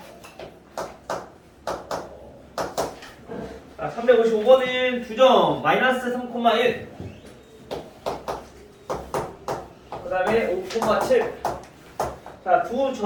자, 355번은 두 점 마이너스 3,1 그 다음에 5,7 자, 두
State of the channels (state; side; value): identical; both; correlation 1.00